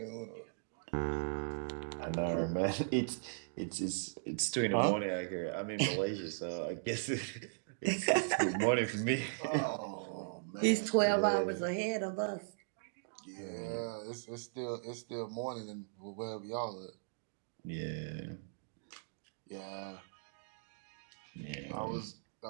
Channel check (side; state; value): left; silent; digital silence